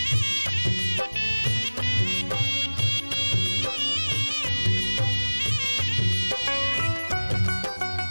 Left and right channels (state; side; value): inverted; both; correlation -1.00